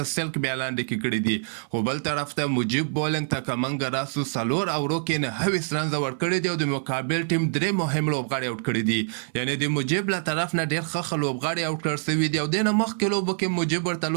سلک بیا لاندې کې کړي دي. خو بل طرف ته مجیب بالینګ ته کمنګ راسو سلور او روکې نه 20 رنز ورکړي دي او د مقابل ټیم درې مهم لوبغاړي اوټ کړي دي. یعنی د مجیب له طرف نه ډېر ښه لوبغاړي اوټ کړل سوي دي او دې نه مخکې لوبو کې مجیب ورته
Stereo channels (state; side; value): silent; left; 58 dB below the other